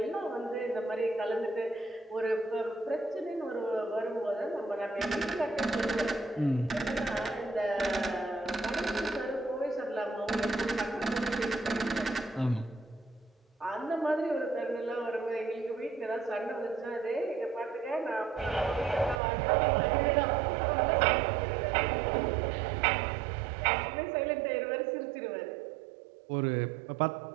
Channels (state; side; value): drops out; left; at 19.2 s